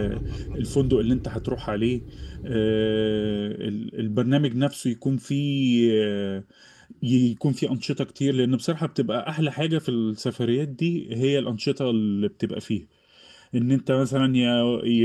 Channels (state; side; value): identical; both; correlation 1.00